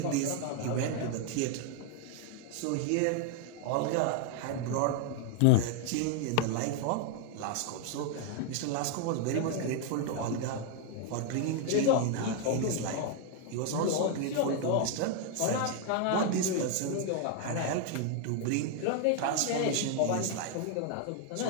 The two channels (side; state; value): both; different; correlation 0.00